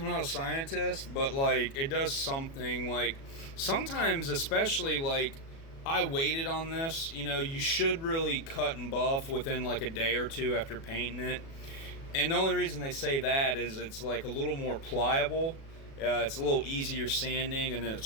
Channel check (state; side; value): late; right; 36 ms